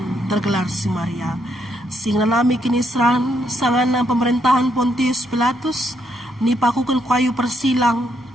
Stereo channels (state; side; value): normal; both; correlation 0.76